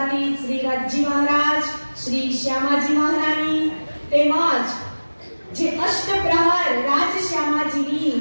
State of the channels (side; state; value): both; inverted; correlation -1.00